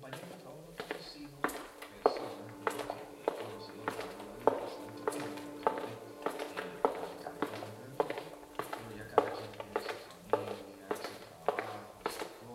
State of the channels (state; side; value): identical; both; correlation 1.00